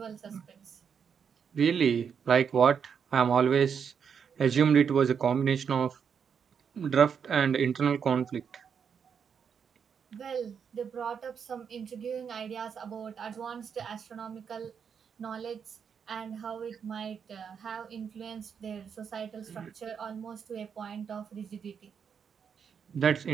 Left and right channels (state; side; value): quieter; left; 7.0 dB